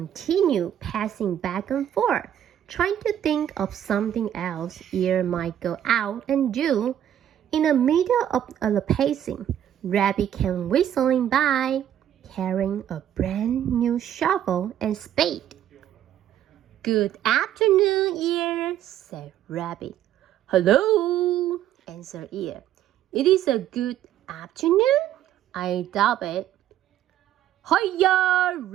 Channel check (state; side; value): quieter; left; 10.9 dB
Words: passing back and forth, trying to think of something else Ear might go out and do. In the middle of the pacing, Rabbit came whistling by, carrying a brand new shovel and spade. Good afternoon, Ear, said Rabbit. Hello, answered Ear. It is a good afternoon? I doubt it. Hiya,